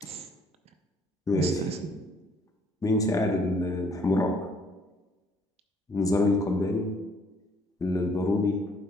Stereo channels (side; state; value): both; normal; correlation 0.63